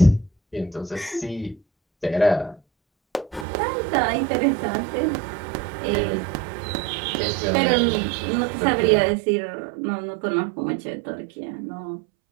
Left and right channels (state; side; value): drops out; left; at 3.5 s